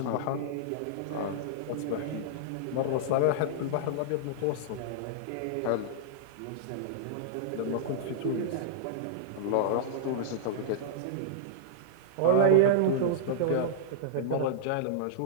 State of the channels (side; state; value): both; different; correlation -0.02